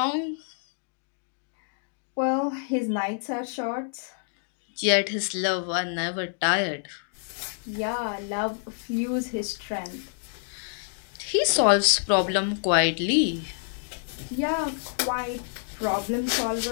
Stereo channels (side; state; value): right; silent; digital silence